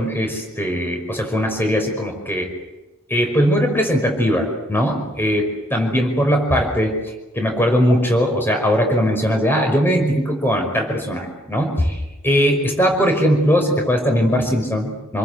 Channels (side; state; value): both; normal; correlation 0.69